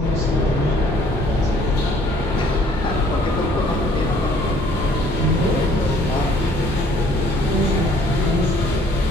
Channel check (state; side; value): normal; both; correlation 0.59